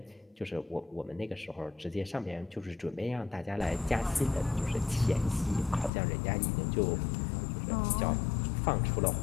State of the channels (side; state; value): right; drops out; at 5.9 s